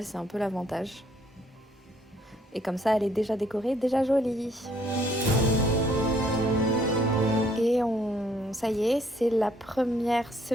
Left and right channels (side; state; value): both; normal; correlation 0.66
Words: c'est un peu l'avantage. Et comme ça, elle est déjà décorée, déjà jolie. Et ça y est, c'est la première